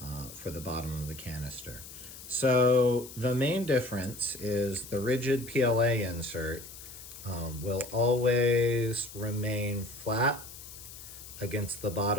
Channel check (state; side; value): noise; left; hiss, 14 dB below the sound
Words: for the bottom of the canister. So the main difference is the rigid PLA insert will always remain flat against the